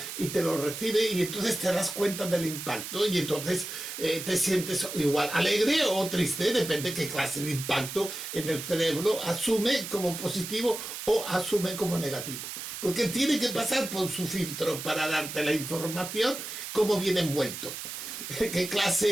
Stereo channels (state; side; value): noise; right; hiss, 8 dB below the sound